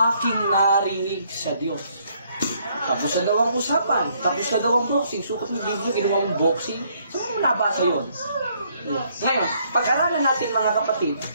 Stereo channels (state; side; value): inverted; both; correlation -0.68